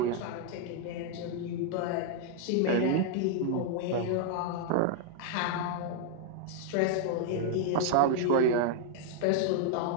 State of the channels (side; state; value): both; different; correlation 0.00